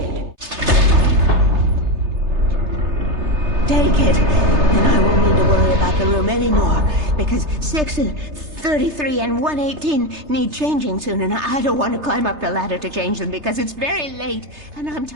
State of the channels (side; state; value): left; late; 3.3 ms